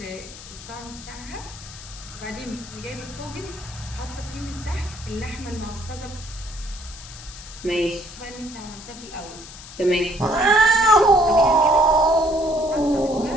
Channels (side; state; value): left; noise; hiss, 15 dB below the sound